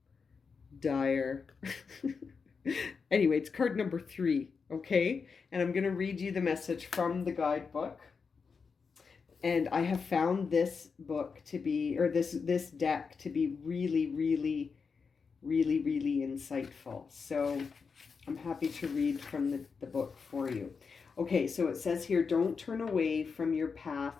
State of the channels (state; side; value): quieter; right; 5.4 dB